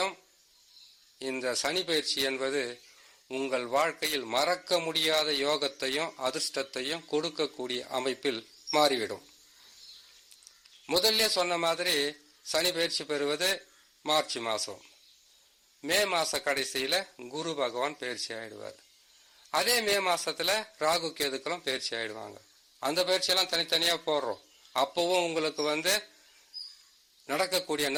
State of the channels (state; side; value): identical; both; correlation 1.00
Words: இந்த சனி பயிற்சி என்பது உங்கள் வாழ்க்கையில் மறக்க முடியாத யோகத்தையும் அதிர்ஷ்டத்தையும் கொடுக்கக்கூடிய அமைப்பில் மாறிவிடும். முதல்ல சொன்ன மாதிரி சனி பயிற்சி பெறுவது மார்ச் மாதம். மே மாச கடைசியில குரு பகவான் பயிற்சி ஆயிடுவார். அதே மே மாசத்துல ராகு கேதுக்களும் பயிற்சி ஆயிடுவாங்க. அந்த பயிற்சியெல்லாம் தனித்தனியா போடுறோம். அப்பவும் உங்களுக்கு நடக்கக்கூடிய